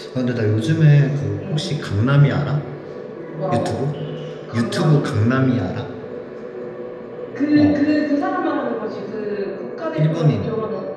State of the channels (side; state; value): both; identical; correlation 1.00